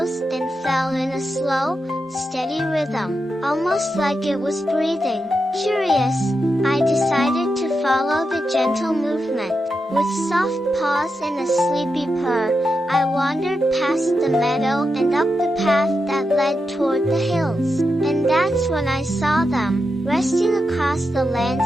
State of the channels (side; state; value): both; normal; correlation 0.87